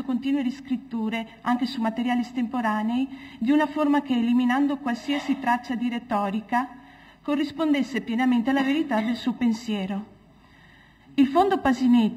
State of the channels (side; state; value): both; identical; correlation 1.00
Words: continue riscritture, anche su materiali estemporanei, di una forma che, eliminando qualsiasi traccia di retorica, corrispondesse pienamente alla verità del suo pensiero. Il fondo